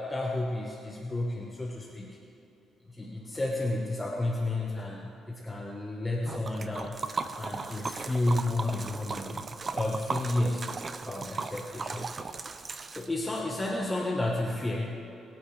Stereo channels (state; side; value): normal; both; correlation 0.89